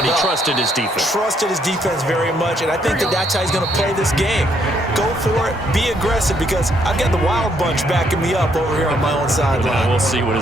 But he up. trusted his defense. Trusted his defense very much, and I think that's how he's going to play this game. Go for it, be aggressive, because I've got the wild bunch backing me up over here on my own sideline. We'll see what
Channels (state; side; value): normal; both; correlation 0.71